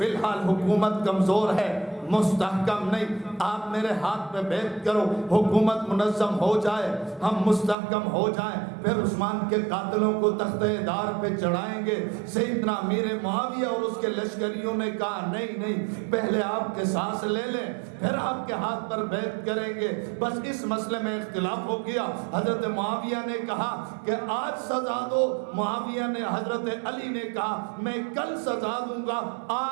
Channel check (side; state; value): left; drops out; at 7.8 s